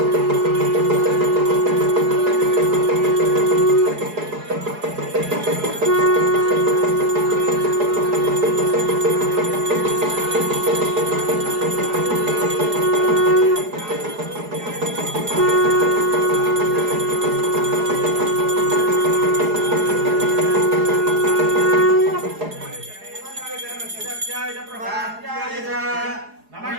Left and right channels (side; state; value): left; late; 4.8 ms